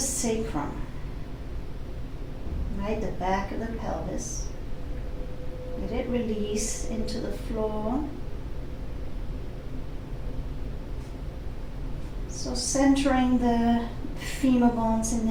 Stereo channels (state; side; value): identical; both; correlation 1.00